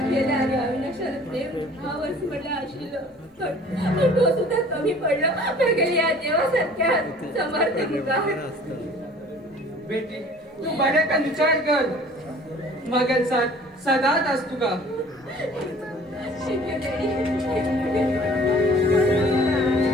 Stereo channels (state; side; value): normal; both; correlation 0.50